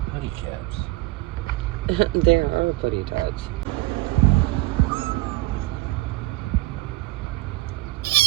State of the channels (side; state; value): left; quieter; 18.7 dB